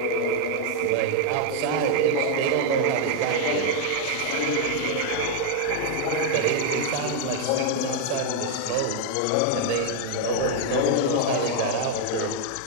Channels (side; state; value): both; different; correlation 0.00